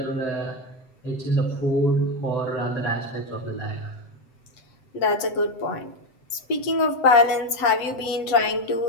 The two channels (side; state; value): right; late; 7.8 ms